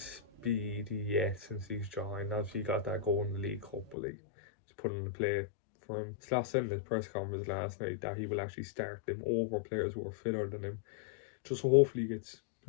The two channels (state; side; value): drops out; right; at 4.0 s